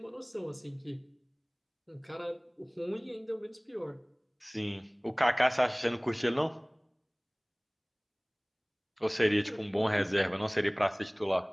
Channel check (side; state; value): both; identical; correlation 1.00